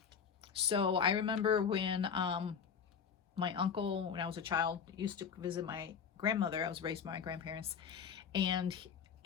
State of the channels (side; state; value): right; quieter; 6.9 dB